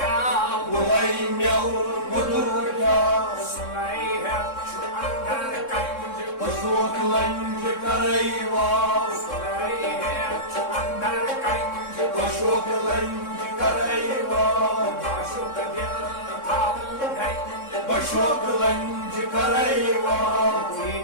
mulayim yavrum odur kav, Slay hep şu andar kanjı, başoklanje kareiva, Slay hep şu andar kanjı, başoklanje kareiva, Başok dil tavun kanjı, başoklanje kareiva,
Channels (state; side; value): late; right; 3.6 ms